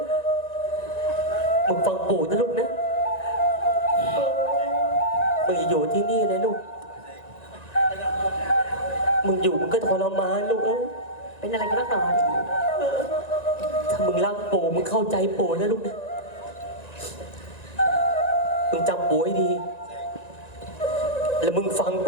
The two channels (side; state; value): right; late; 1.9 ms